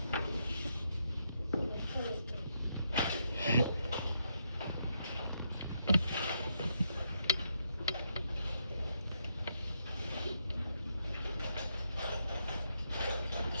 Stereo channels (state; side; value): inverted; both; correlation -0.79